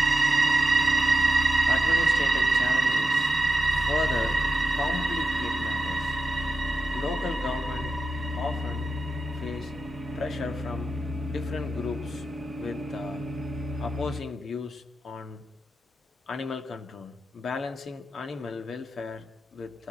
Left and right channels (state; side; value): normal; both; correlation 0.89